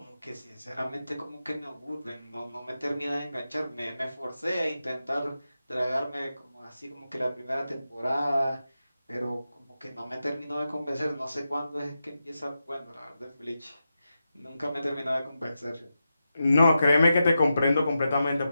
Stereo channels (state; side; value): inverted; both; correlation -0.90